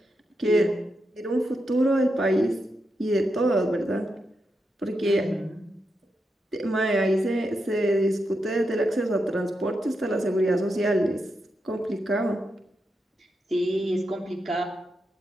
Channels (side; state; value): both; normal; correlation 0.85